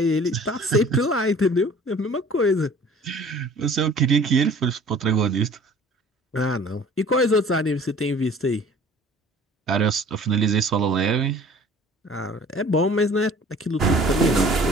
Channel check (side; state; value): both; normal; correlation 0.48